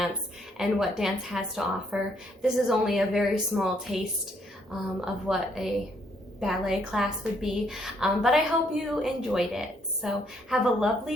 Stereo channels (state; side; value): normal; both; correlation 0.70